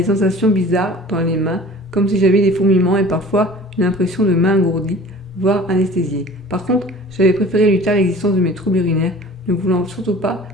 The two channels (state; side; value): normal; both; correlation 0.45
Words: sensations bizarres dans les mains, comme si j'avais des fourmillements et parfois une impression de main engourdie, voire anesthésiée. Par contre, j'avais préféré lui taire l'existence de mes troubles urinaires, ne voulant surtout pas